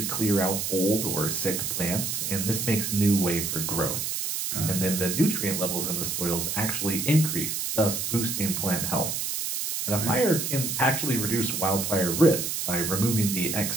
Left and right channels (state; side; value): noise; right; hiss, 2 dB below the sound